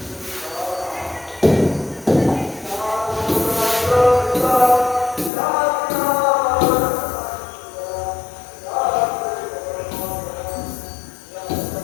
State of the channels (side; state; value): right; drops out; at 5.3 s